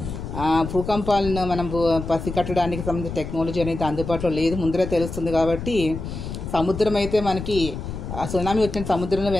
భూకంపాలను మనం పసిగట్టడానికి సంబంధించిన టెక్నాలజీ అనేది అందుబాటులో లేదు, ముందరే తెలుస్తుంది. కాబట్టి సముద్రం అయితే మనకి సునామీ వచ్చిన సముద్రంలో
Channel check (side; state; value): left; noise; rumble, 7 dB below the sound